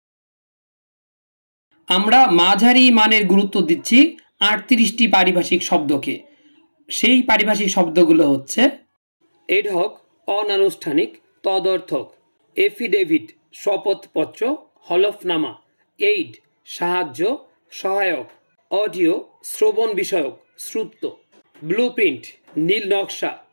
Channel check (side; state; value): both; inverted; correlation -1.00